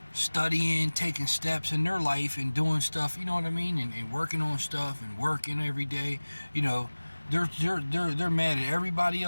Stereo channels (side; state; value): both; inverted; correlation -1.00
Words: Studying, taking steps in their life and doing stuff, you know what I mean? And working on stuff and working every day, you know. They're mad at everybody